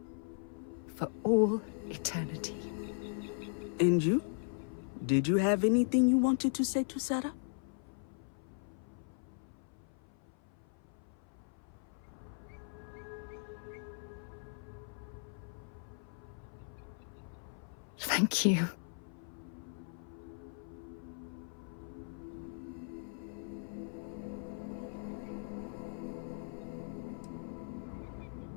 for all eternity. And you? Did you have anything you wanted to say to Sarah? Thank you.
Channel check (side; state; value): right; silent; 52 dB below the other